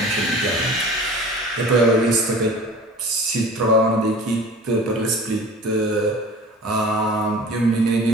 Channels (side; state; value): both; normal; correlation 0.41